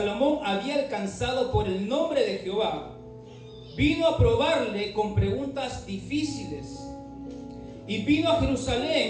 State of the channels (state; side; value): identical; both; correlation 1.00